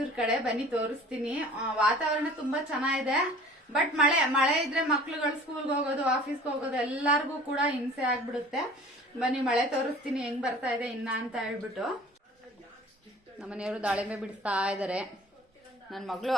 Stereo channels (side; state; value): both; normal; correlation 0.46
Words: ಕಡೆ. ಬನ್ನಿ ತೋರಿಸ್ತೀನಿ. ವಾತಾವರಣ ತುಂಬಾ ಚೆನ್ನಾಗಿದೆ. ಬಟ್ ಮಳೆ ಇದ್ರೆ ಮಕ್ಳುಗಳು ಸ್ಕೂಲ್ಗೆ ಹೋಗೋದು, ಆಫೀಸ್ಗೆ ಹೋಗೋದು ಎಲ್ಲಾರ್ಗು ಕೂಡ ಹಿಂಸೆ ಆಗ್ಬಿಡುತ್ತೆ. ಬನ್ನಿ ಮಳೆ ತೋರಿಸ್ತೀನಿ ಹೆಂಗ್ ಬರ್ತಾ ಇದೆ ಇನ್ನ ಅಂತ ಹೇಳ್ಬಿಟ್ಟು. ನಮ್ಮನೆಯವರು ದಾಳಿಂಬೆ ಬಿಡ್ತಾ ಇದಾರೆ. ನನ್ನ ಮಗಳು